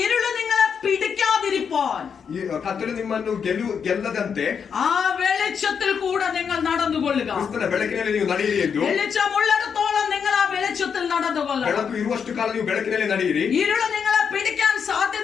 ഇരുള് നിങ്ങളെ പിടിക്കാതിരിപ്പാൻ പോകാതിരിപ്പാൻ ಈ ಕತ್ತಲು ನಿಮ್ಮನ್ನು ಗೆಲ್ಲದಂತೆ ആ വെളിച്ചത്തിൽ കൂടെ നിങ്ങൾ നടന്നുകൊള്ളുക. ಕ್ರಿಸ್ತನ ಬೆಳಕಿನಲ್ಲಿ ನೀವು ನಡೆಯಿರಿ ಎಂದು. വെളിച്ചമുള്ളിടത്തോളം നിങ്ങൾ ആ വെളിച്ചത്തിൽ നടന്നുകൊള്ളുക. ಬೆಳಕು ಇರುವಷ್ಟು ಕಾಲ ನೀವು ಬೆಳಕಿನಲ್ಲಿ ನಡೆಯಿರಿ. ഇരുള് നിങ്ങളെ പിടിക്കാൻ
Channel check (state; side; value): quieter; right; 6.8 dB